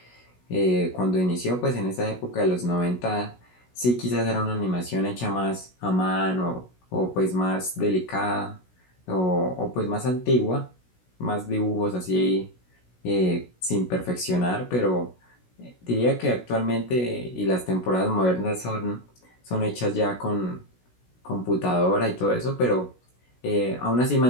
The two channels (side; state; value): right; late; 16 ms